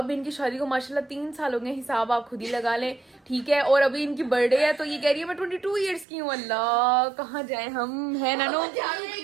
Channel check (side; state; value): left; drops out; at 6.1 s